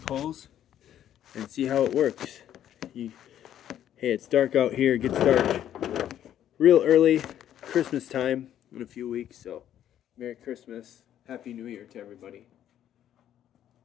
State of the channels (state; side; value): quieter; right; 10.9 dB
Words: and see how it works. Hey, it's dark out here. It gets dark real early, Christmas time in a few weeks. So, Merry Christmas, Happy New Year to everybody.